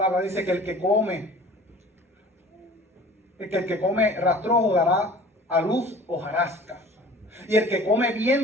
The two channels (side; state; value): both; normal; correlation 0.45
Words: dice que el que come rastrojo dará a luz hojarasca. Y el que come